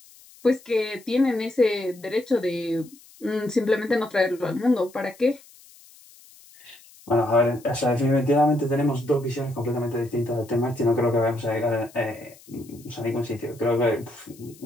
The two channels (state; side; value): noise; left; hiss, 24 dB below the sound